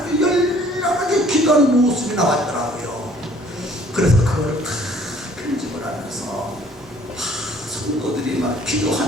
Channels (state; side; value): normal; both; correlation 0.57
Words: 열렬하게 기도하는 모습이 나왔더라고요. 그래서 그걸 다 편집을 하면서 성도들이 막